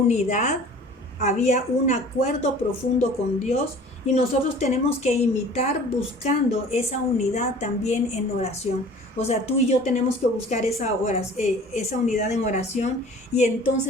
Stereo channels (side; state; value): both; normal; correlation 0.46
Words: Había un acuerdo profundo con Dios y nosotros tenemos que imitar buscando esa unidad también en oración. O sea, tú y yo tenemos que buscar esa unidad en oración y